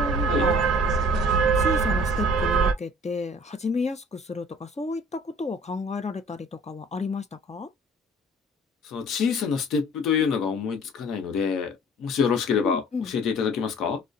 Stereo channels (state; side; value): normal; both; correlation 0.50